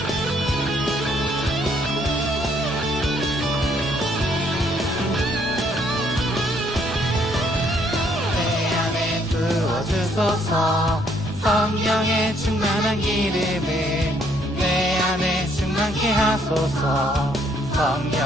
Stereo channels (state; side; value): normal; both; correlation 0.67